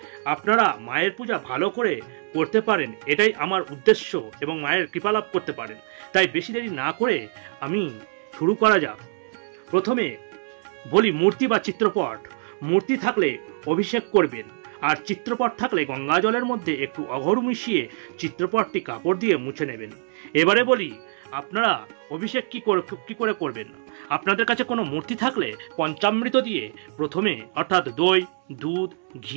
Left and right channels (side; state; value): left; silent; 61 dB below the other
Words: আপনারা মায়ের পূজা ভালো করে করতে পারেন, এটাই আমার উদ্দেশ্য, এবং মায়ের কৃপা লাভ করতে পারেন। তাই বেশি দেরি না করে আমি শুরু করা যাক। প্রথমে বলি মূর্তি বা চিত্রপট। মূর্তি থাকলে অভিষেক করবেন, আর চিত্রপট থাকলে গঙ্গা জলের মধ্যে একটু অঘর মিশিয়ে চিত্রপটটি কাপড় দিয়ে মুছে নেবেন। এবারে বলি আপনারা অভিষেক কি করে করবেন। আপনাদের কাছে কোনো মূর্তি থাকলে পঞ্চামৃত দিয়ে প্রথমে, অর্থাৎ দই, দুধ,